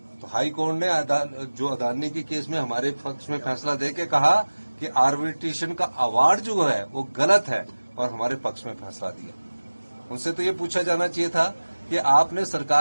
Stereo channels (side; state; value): both; inverted; correlation -1.00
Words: तो हाई कोर्ट ने जो अदानी के केस में हमारे पक्ष में फैसला देके कहा कि आर्बिट्रेशन का अवार्ड जो है वो गलत है और हमारे पक्ष में फैसला दिया। उनसे तो ये पूछा जाना चाहिए था कि आपने